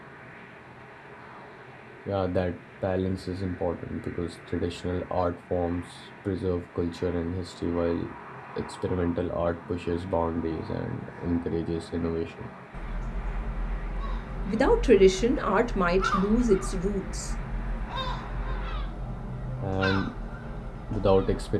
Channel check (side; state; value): both; identical; correlation 1.00